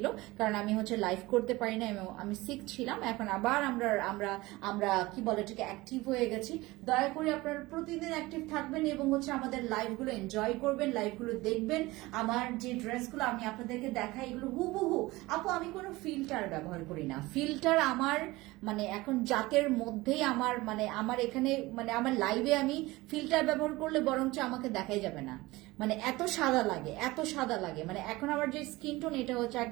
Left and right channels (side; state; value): left; quieter; 20.4 dB